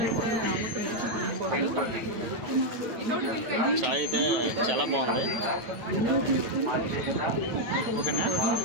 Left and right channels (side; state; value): left; late; 9.5 ms